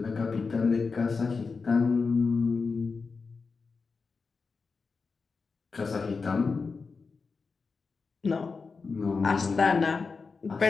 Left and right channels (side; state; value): right; quieter; 4.7 dB